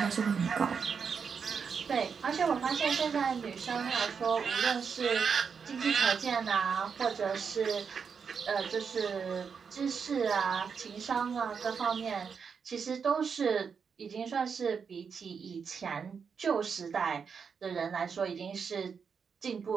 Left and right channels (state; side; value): quieter; left; 6.2 dB